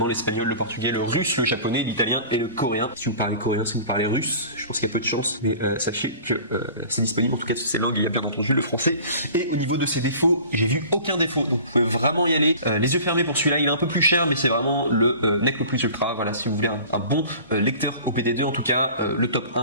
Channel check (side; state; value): both; inverted; correlation -0.42